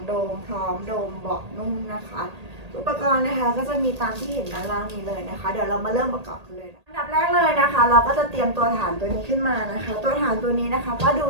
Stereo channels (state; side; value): late; left; 1.8 ms